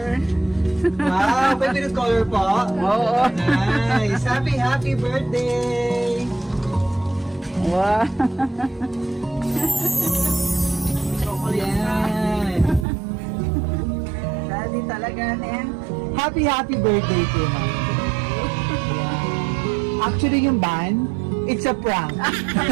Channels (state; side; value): drops out; left; at 12.9 s